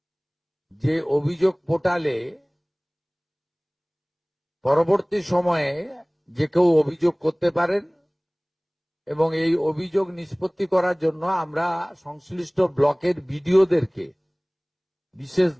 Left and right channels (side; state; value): both; identical; correlation 1.00